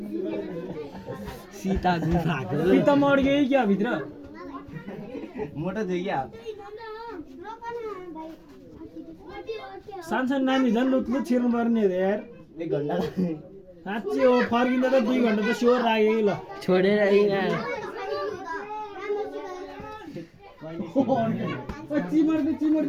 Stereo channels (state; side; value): identical; both; correlation 1.00